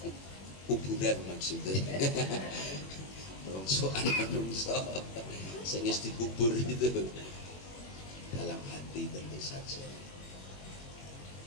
kuburan maksudnya. Rongsokan menungso sing wis dikubur itu dalam hati tentu saja.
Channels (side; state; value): right; late; 21 ms